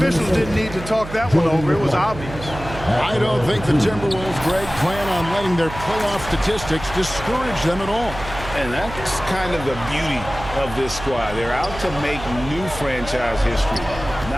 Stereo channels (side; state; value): right; noise; hum, 11 dB below the sound